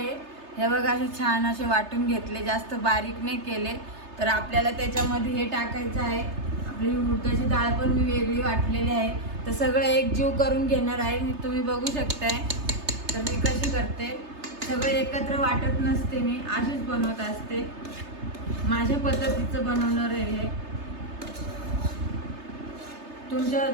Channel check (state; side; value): late; left; 3.3 ms